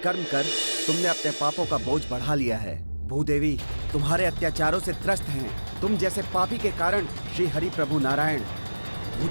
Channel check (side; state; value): both; inverted; correlation -1.00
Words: कर तुमने अपने पापों का बोझ बढ़ा लिया है। भूदेवी तुम्हारे अत्याचारों से त्रस्त हैं। तुम जैसे पापी के कारण श्री हरि प्रभु नारायण